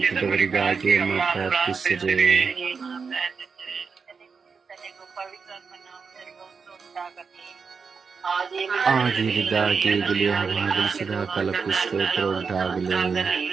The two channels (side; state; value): left; quieter; 5.4 dB